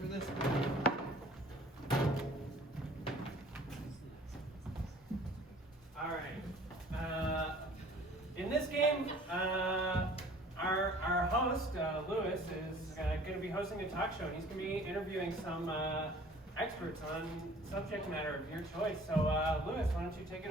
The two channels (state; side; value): normal; both; correlation 0.50